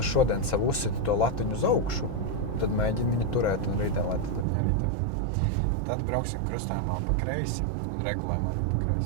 šodien sev uzsiti to latiņu uz augšu, tad mēģini viņu turēt un rītdien, lai tad viņi arī tev ir. Tad brauksim krustājumā pa kreisi un regulējam arī pa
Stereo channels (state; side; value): drops out; left; at 4.5 s